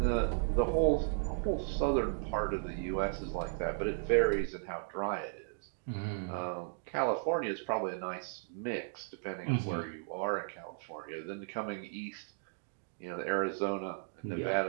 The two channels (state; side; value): silent; left; digital silence